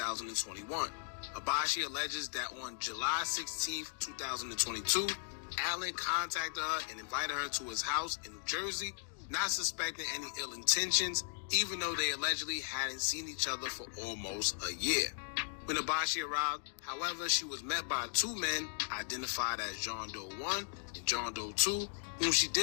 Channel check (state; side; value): silent; right; digital silence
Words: Abashi alleges that on July 16, 2022, Allen contacted her and invited her to his house in New Jersey, not suspecting any ill intentions, even though they allegedly hadn't seen each other for almost a year. When Abashi arrived, however, she was met by two men identified as John Doe 1 and John Doe 2, whom she